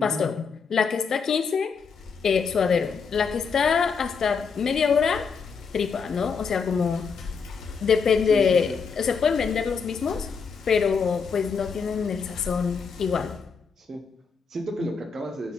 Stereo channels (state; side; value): quieter; right; 5.7 dB